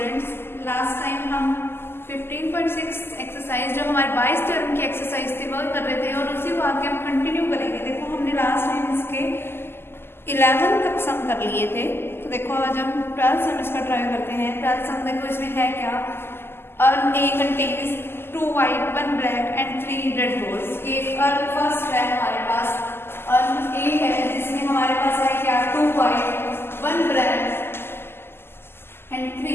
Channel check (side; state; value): right; late; 0.11 ms